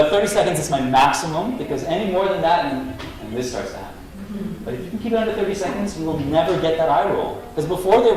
30 seconds is my maximum, because any more than that, and this starts to happen. But if you can keep it under 30 seconds, you will never get that eye roll. Because before they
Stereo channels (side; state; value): both; identical; correlation 1.00